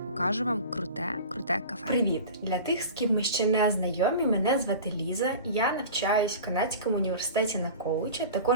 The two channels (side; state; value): both; inverted; correlation -0.36